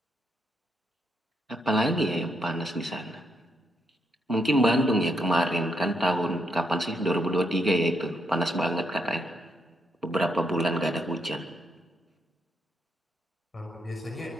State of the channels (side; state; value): both; normal; correlation 0.78